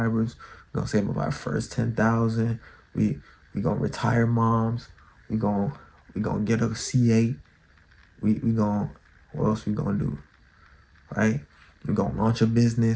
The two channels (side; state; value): both; identical; correlation 1.00